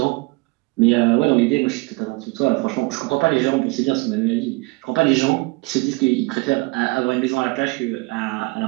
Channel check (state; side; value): quieter; left; 25.1 dB